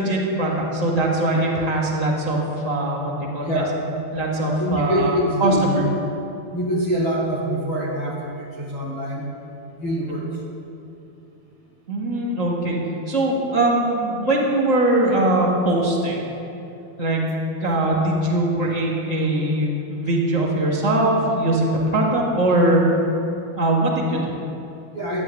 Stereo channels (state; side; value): late; right; 12 ms